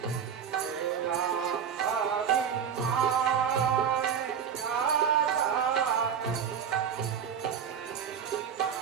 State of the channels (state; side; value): quieter; left; 7.7 dB